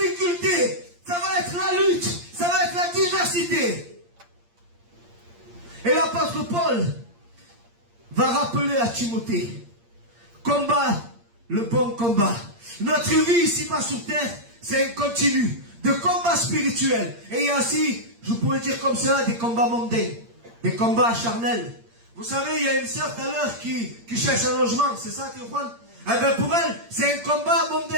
ça va être la lutte, ça va être la diversité. Et l'apôtre Paul va rappeler à Timothée, combat le bon combat. Notre vie ici-bas sur terre, c'est un continu de combat spirituel. Et il y a aussi, je pourrais dire comme ça, des combats mondains, des combats charnels. Vous savez, il y a une sœur tout à l'heure qui cherche un logement, c'est ça, Théophane? Eh bien pour elle, c'est un combat mondain,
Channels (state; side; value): late; left; 8.6 ms